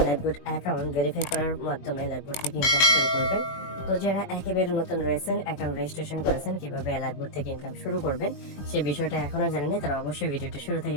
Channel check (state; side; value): late; right; 21 ms